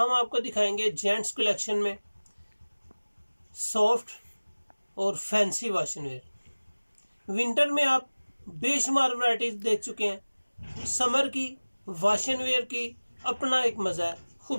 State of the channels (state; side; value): inverted; both; correlation -1.00